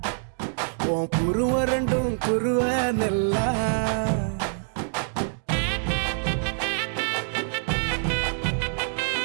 உன் குருவ ரெண்டும் குருவ நெல்லா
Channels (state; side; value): silent; left; digital silence